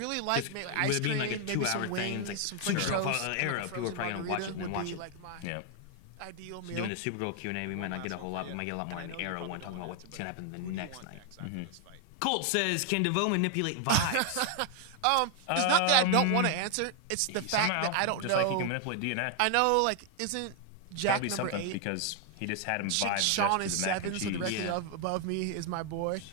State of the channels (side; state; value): both; different; correlation 0.00